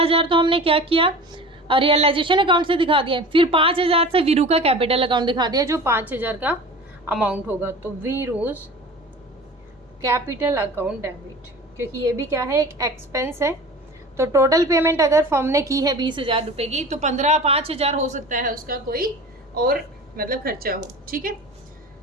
तो हमने क्या किया? रियलाइजेशन अकाउंट से दिखा दिया, फिर 5,000 से वीरू का कैपिटल अकाउंट दिखा दिया जो 5,000 का अमाउंट होगा। तो वीरूज कैपिटल अकाउंट डेबिट, क्योंकि ये भी क्या है? एक एक्सपेंस है। तो टोटल पेमेंट अगर फर्म ने की है 20,000 रुपये की, तो 5,000 हो सकता है उसका कोई और मतलब खर्चा हो। ठीक है,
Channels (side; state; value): both; normal; correlation 0.38